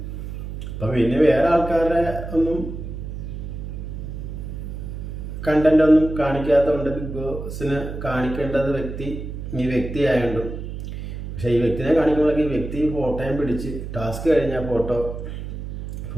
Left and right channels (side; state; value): right; noise; hum, 7 dB below the sound